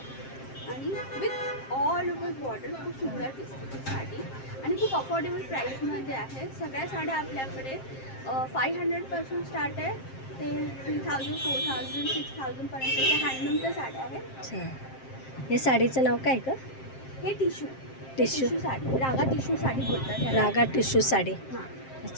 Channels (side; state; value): right; late; 7.6 ms